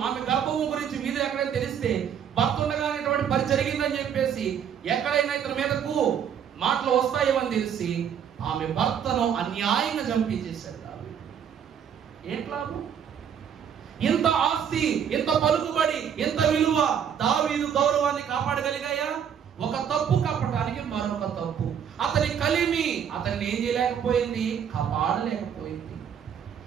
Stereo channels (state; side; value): quieter; left; 8.2 dB